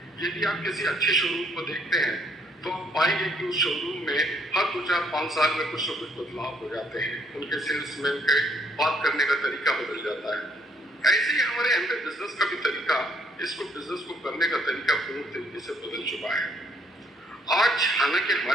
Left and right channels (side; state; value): both; normal; correlation 0.67